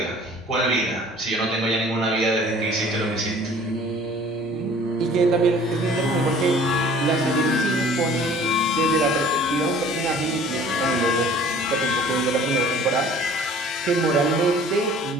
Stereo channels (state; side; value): normal; both; correlation 0.50